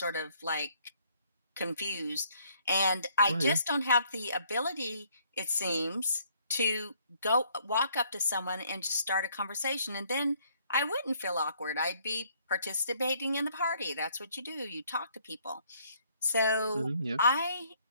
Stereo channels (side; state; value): both; inverted; correlation -0.65